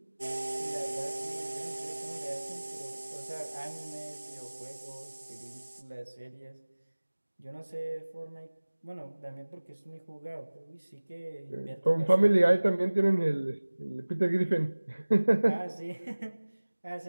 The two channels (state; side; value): inverted; both; correlation -1.00